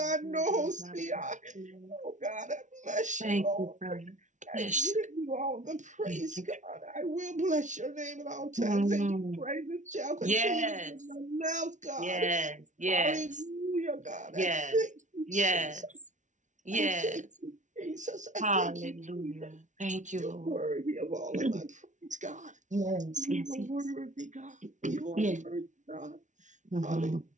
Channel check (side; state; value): left; late; 0.36 ms